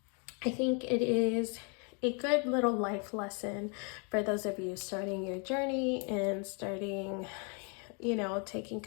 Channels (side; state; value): right; quieter; 36.9 dB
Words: I think it is a good little life lesson for those of you starting your journey and starting, taking